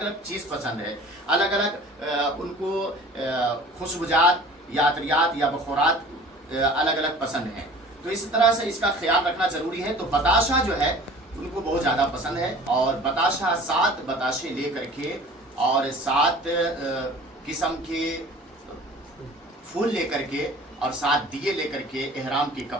अलग चीज़ पसंद है, अलग अलग उनको खुशबुजात या अतरियात या बखूरात अलग अलग पसंद हैं। तो इस तरह से इसका ख्याल रखना ज़रूरी है। तो बताशा जो है उनको बहुत ज़्यादा पसंद है और बताशा 7 बताशे ले करके और 7 किस्म के फूल ले करके और 7 दिए ले करके एहराम के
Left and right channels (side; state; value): both; normal; correlation 0.44